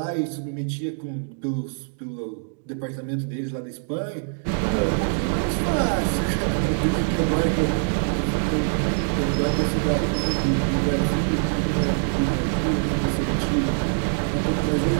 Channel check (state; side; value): silent; left; digital silence